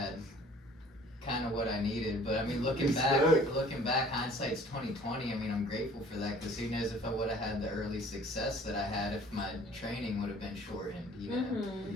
kind of what I needed. But I mean, looking back, hindsight's 2020. I mean, I'm grateful for that, because who knows if I would have had the early success that I had if my training would have been shortened, you know.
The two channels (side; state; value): both; normal; correlation 0.52